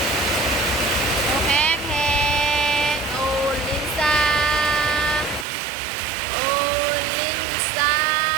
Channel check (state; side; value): drops out; left; at 5.5 s